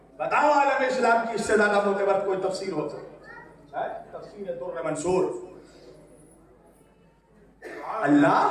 بتاؤ عالم اسلام کی اس سے زیادہ معتبر کوئی تفسیر ہو سکتی ہے؟ تفسیر در منصور. اللہ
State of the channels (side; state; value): both; identical; correlation 1.00